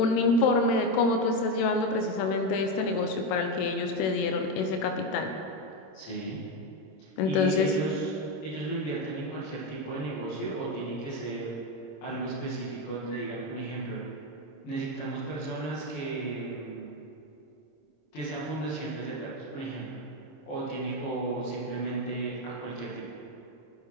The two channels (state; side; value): late; right; 26 ms